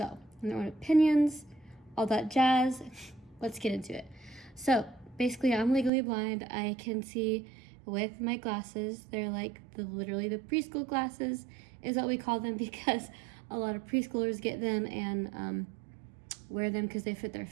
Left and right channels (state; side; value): drops out; left; at 5.9 s